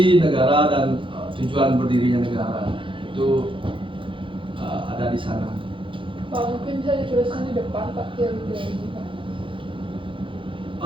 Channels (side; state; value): left; late; 0.25 ms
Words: negara dan tujuan berdirinya negara. Itu ada di sana. Pak, mungkin bisa dituliskan di depan Pak teori-teorinya Pak.